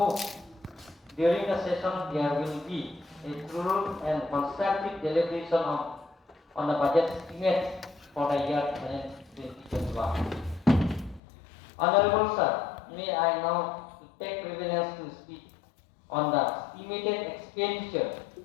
during the session there will be a thorough and constructive deliberation on the budget estimates for the year 2021. Honorable sir, may I now take privilege to speak on the estimated expenditure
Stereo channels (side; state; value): right; drops out; at 11.2 s